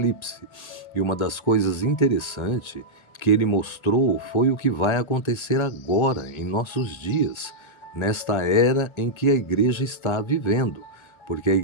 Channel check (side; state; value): right; late; 1.3 ms